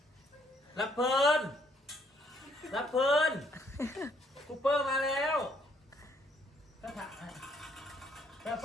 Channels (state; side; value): normal; both; correlation 0.67